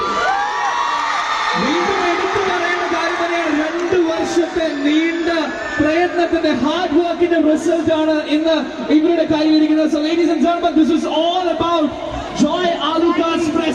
വീണ്ടും എടുത്തു പറയേണ്ട കാര്യം തന്നെയാണ്, 2 വർഷത്തെ നീണ്ട പ്രയത്നം പ്രയത്നത്തിന്റെ ഹാർഡ് വർക്കിന്റെ റിസൾട്ട് ആണ് ഇന്ന് ഇവരുടെ കയ്യിലിരിക്കുന്നത്. So ladies and gentlemen, this is all about Joy Alucard's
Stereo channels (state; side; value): identical; both; correlation 1.00